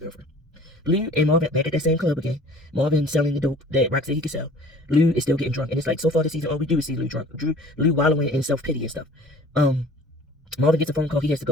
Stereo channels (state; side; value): normal; both; correlation 0.48